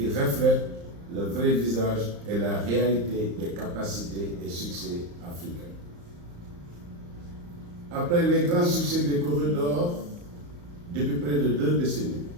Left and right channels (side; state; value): left; late; 34 ms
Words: reflète le vrai visage et la réalité des capacités et succès africains. Après les grands succès des corridors depuis près de 2 décennies,